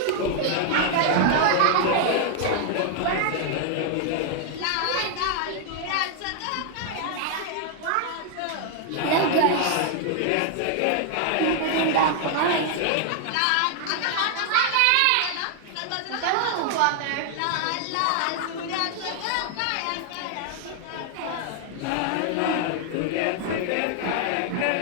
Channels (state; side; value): different; both; correlation 0.00